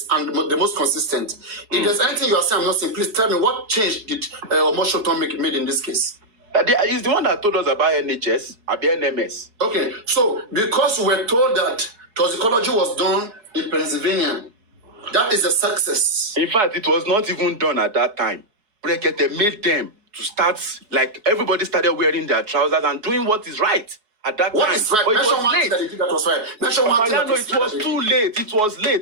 and the most consistent. If there's anything you are saying I'm not saying, please tell me what change did Omoshoton made in this case? He's the one that told us about NHS, about NMS. Okay, so because we were told that toxicology was done in Pennsylvania, that is a success. In fact, it was not even done at that time. Berekete made them to start, like everybody started wearing their trousers and doing what is right. At that what time, is right? But it was late. That that was right. Mention one thing. It was too late. It was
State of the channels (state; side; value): late; left; 4.7 ms